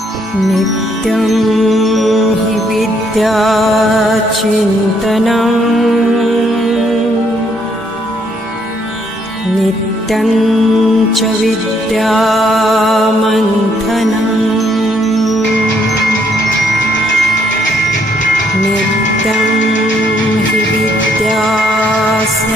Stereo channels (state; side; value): normal; both; correlation 0.70